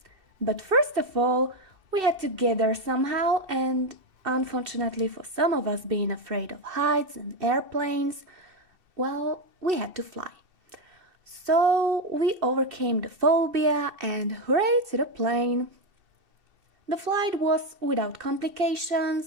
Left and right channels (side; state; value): left; late; 2.7 ms